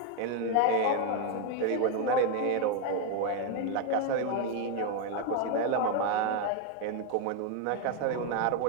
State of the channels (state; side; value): different; both; correlation 0.01